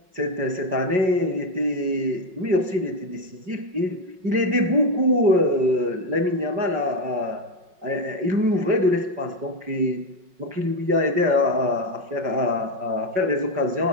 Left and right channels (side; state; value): left; late; 5.4 ms